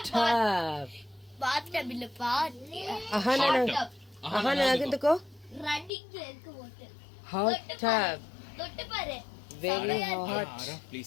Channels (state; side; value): drops out; right; at 5.9 s